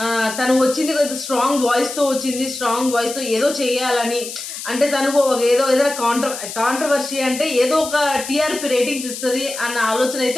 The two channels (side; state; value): left; noise; hiss, 9 dB below the sound